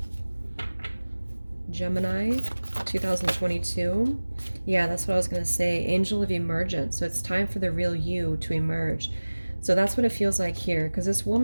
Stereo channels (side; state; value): both; inverted; correlation -1.00